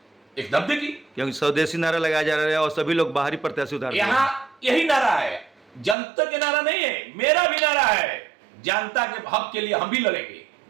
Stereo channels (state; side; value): drops out; left; at 6.0 s